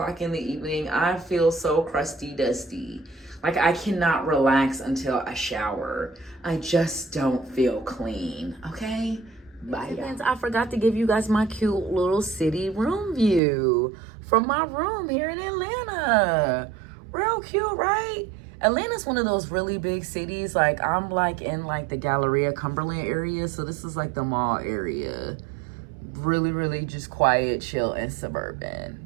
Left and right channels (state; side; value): drops out; left; at 13.4 s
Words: in the evening, I feel so crusty dusty. Like I cannot relax until I shower. I just don't feel clean, okay? Bye, y'all. I forgot to give you guys my cute little city room view from my room here in Atlanta. Real cute, right? Atlanta's one of those really big cities. Like I'm like in like the Galleria Cumberland area. So this is like the mall area. Really, really just quiet, chill, and suburban.